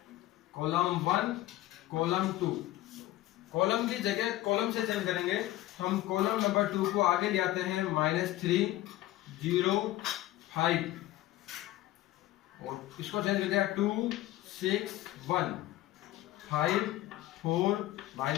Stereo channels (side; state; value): right; quieter; 15.8 dB